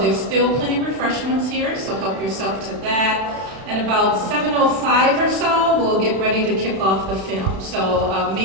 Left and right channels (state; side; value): late; left; 31 ms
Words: still plenty of refreshments here, so help yourself to that. And about 7:05 or so, we'll get ready to kick off the film. So